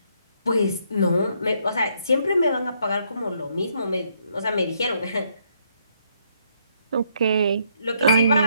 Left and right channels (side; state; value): both; inverted; correlation -0.72